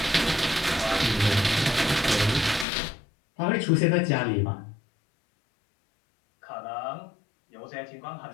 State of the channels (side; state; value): right; drops out; at 2.7 s